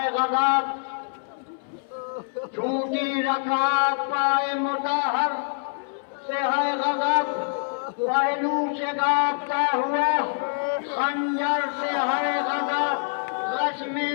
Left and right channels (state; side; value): silent; right; 61 dB below the other